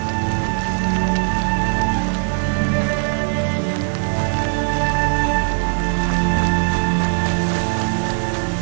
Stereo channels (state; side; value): silent; left; digital silence